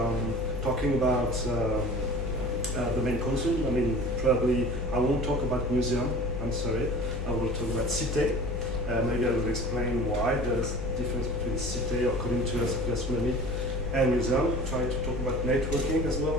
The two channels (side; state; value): left; noise; hum, 4 dB below the sound